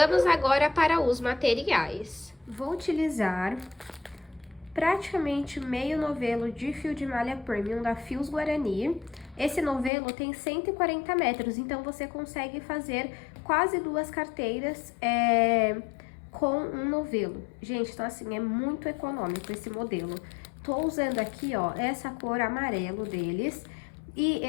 agora para os materiais. Vou utilizar praticamente meio novelo de fio de malha premium da Fios Guarani. Esse novelo tem 140 metros, então você consegue fazer quase 2 carteiras com um novelo. Gente, então assim, é muito econômico esse modelo. Tô usando aqui, ó, essa cor amarelo deles. E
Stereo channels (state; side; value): drops out; right; at 9.9 s